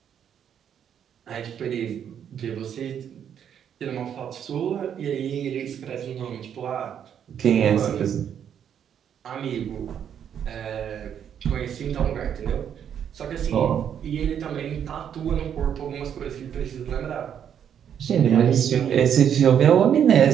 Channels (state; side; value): quieter; left; 8.8 dB